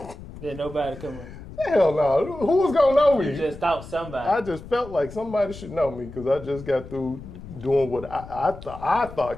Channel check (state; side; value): noise; left; rumble, 15 dB below the sound